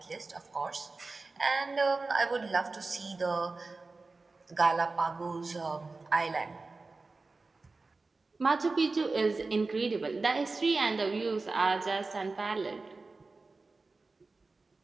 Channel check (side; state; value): left; quieter; 3.7 dB